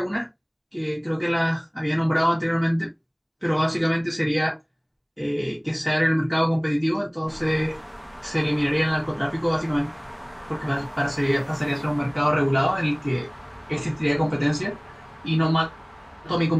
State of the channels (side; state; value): both; identical; correlation 1.00